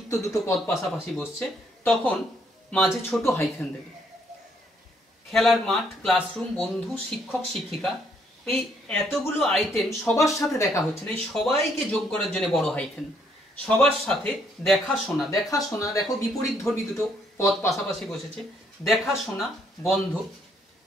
দুটো পদ পাশাপাশি বসছে, তখন মাঝে ছোট হাইফেন দেবে। খেলার মাঠ, ক্লাসরুম, বন্ধু, শিক্ষক শিক্ষিকা, এই এতগুলো আইটেম সবার সাথে দেখা হচ্ছে না, এই সবাইকে যোগ করার জন্য বড় হাইফেন। সবার সাথে দেখাশোনা, দেখাশোনা দেখো বিপরীত ধর্মী দুটো পদ পাশাপাশি বসেছে, দেখাশোনা বন্ধ,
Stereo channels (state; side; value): normal; both; correlation 0.69